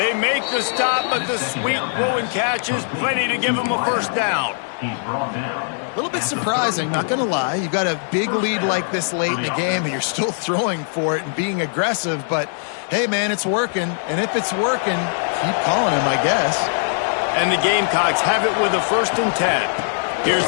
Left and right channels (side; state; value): right; silent; 62 dB below the other